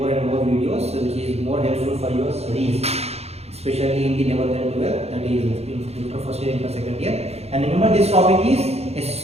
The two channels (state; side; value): late; left; 0.30 ms